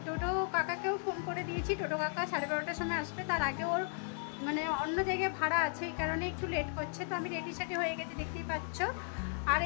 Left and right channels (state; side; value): silent; right; 54 dB below the other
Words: টোটো কাকাকেও ফোন করে দিয়েছি, টোটো কাকা 12:30টার সময় আসবে। তার আগে ওর মানে অন্য জায়গায় ভাড়া আছে, এই কারণে একটু লেট করছে। তো আমি রেডি সেডি হয়ে গেছি, দেখতেই পাচ্ছ। আর